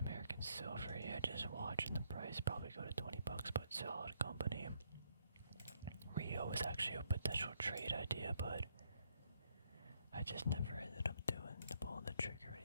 Silver, yeah, just watching the price probably go to $20, but solid company. Rio was actually a potential trade idea, but I just never ended up doing pulling the trigger or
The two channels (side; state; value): both; inverted; correlation -0.73